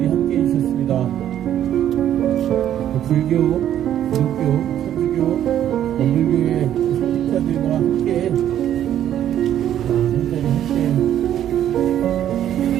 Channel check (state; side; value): quieter; left; 11.0 dB